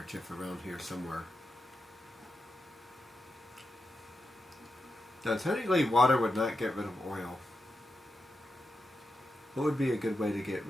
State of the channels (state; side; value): normal; both; correlation 0.88